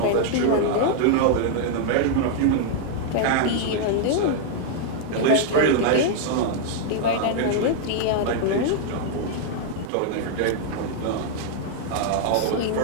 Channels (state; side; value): different; both; correlation 0.00